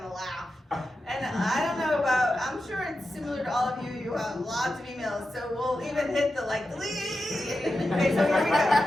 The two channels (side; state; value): both; normal; correlation 0.90